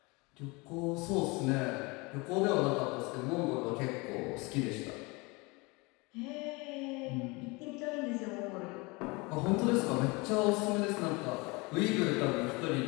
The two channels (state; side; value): quieter; right; 26.3 dB